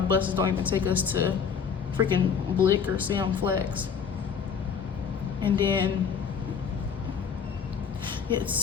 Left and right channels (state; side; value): quieter; right; 6.7 dB